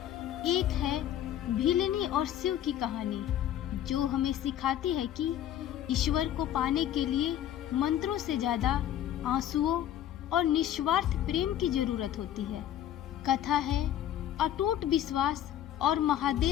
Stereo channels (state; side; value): quieter; right; 11.3 dB